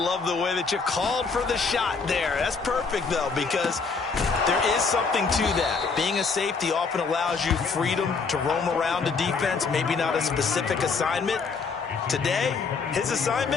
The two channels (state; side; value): quieter; right; 4.9 dB